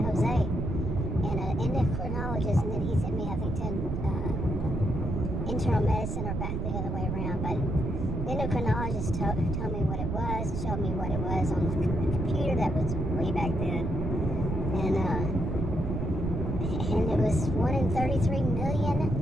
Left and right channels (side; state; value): right; noise; rumble, 2 dB below the sound